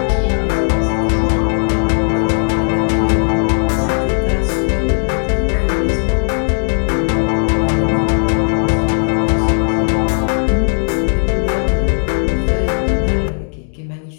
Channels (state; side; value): silent; right; digital silence